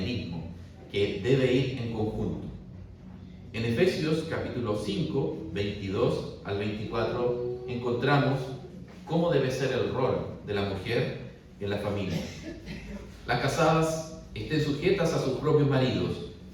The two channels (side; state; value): both; identical; correlation 1.00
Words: que debe ir en conjunto. En Efesios capítulo 5, 22 al 24 encontramos cómo debe ser el rol de la mujer en la familia. Las casadas estén sujetas a sus propios maridos,